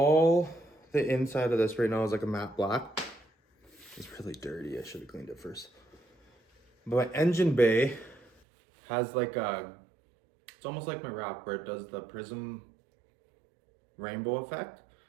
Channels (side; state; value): left; drops out; at 8.3 s